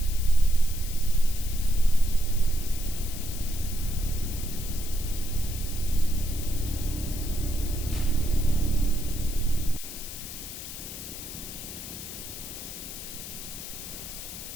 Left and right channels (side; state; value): left; noise; hiss, 10 dB below the sound